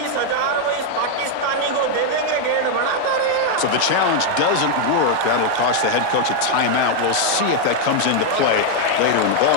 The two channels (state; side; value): different; both; correlation 0.00